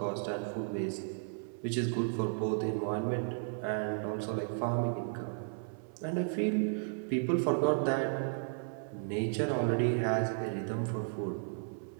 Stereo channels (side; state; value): left; silent; 55 dB below the other